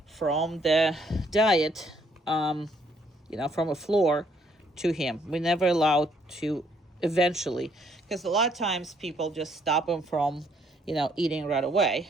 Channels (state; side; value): normal; both; correlation 0.67